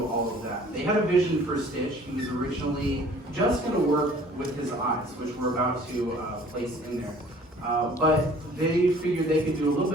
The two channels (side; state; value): both; normal; correlation 0.52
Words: all of that. They had a vision for Stitch. He was originally just going to work with his eyes, which we're about to place in there. But they figured they could do a little